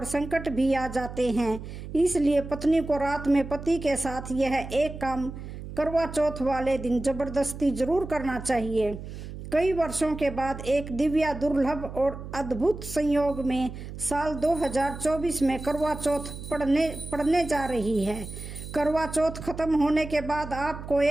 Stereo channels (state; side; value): noise; right; hum, 10 dB below the sound